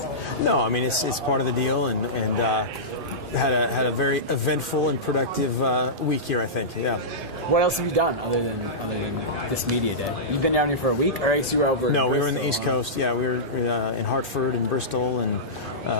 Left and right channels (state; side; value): normal; both; correlation -0.16